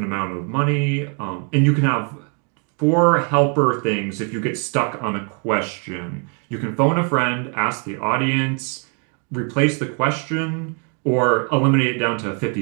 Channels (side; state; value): left; quieter; 38.3 dB